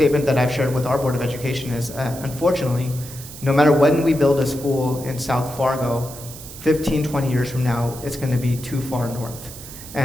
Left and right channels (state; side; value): noise; right; hiss, 14 dB below the sound